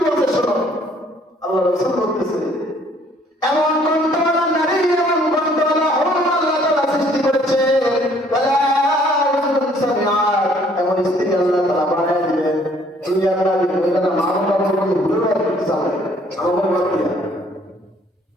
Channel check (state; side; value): normal; both; correlation 0.61